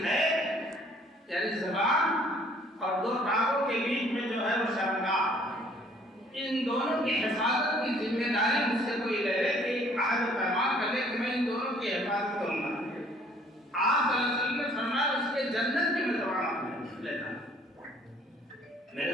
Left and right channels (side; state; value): both; normal; correlation 0.58